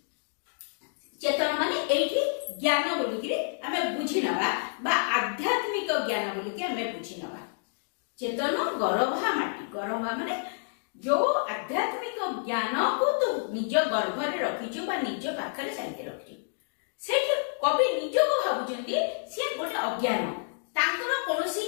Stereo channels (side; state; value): right; silent; digital silence